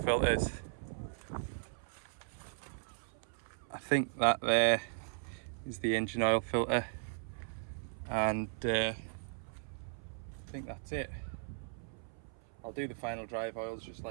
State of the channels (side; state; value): left; silent; 53 dB below the other